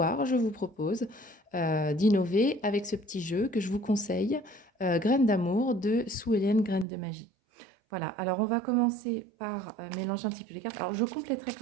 je vous propose d'innover avec ce petit jeu que je vous conseille, Graines d'amour de Sue Ellen Graines de magie. Voilà, alors on va commencer par mélanger un petit peu les cartes. Alors je compléterai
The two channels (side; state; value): left; drops out; at 6.9 s